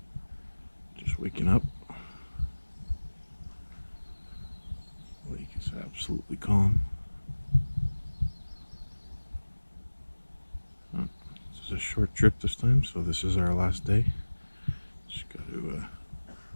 Just waking up. Lake is absolutely calm. This is a short trip this time, so this is our last day. Just got to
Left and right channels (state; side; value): inverted; both; correlation -1.00